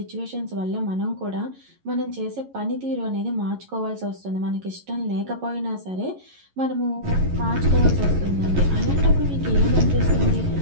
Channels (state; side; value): late; left; 11 ms